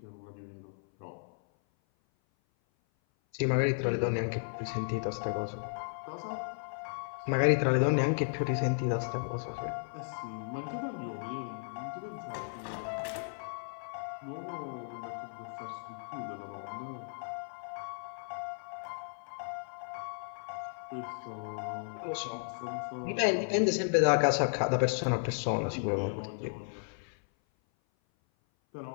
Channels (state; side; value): silent; right; 55 dB below the other